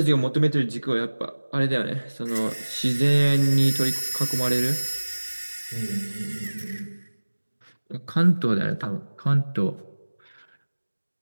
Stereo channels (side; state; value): both; inverted; correlation -1.00